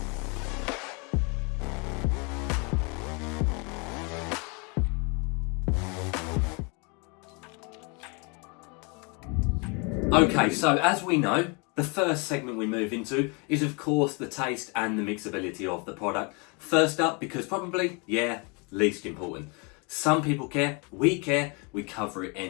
Okay, so as we know, the first segment we move into is of course the taste and the mixability of the product. First up, because probably, least important. Some people care, we cover it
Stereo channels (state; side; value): quieter; right; 32.0 dB